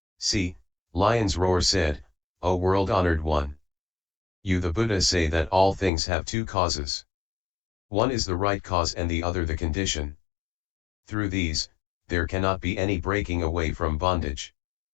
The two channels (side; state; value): right; drops out; at 5.9 s